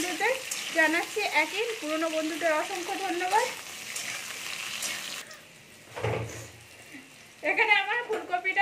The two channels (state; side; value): identical; both; correlation 1.00